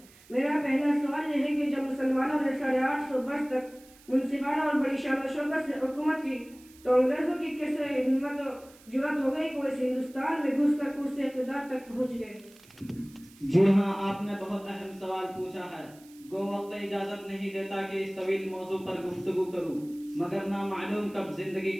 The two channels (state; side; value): noise; right; hiss, 25 dB below the sound